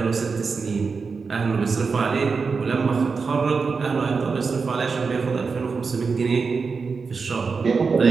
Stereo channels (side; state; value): left; quieter; 4.9 dB